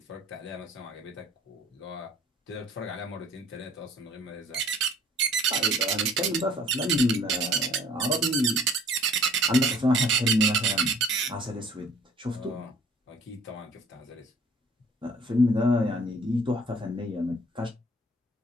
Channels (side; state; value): both; normal; correlation 0.53